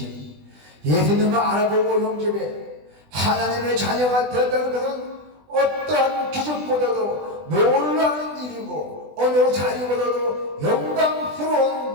예수님을 알아보고 영접해 하나님의 자녀가 되었다는 것은 어떠한 기적보다도 놀라운 일이고 어느 자리보다도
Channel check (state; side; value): late; left; 20 ms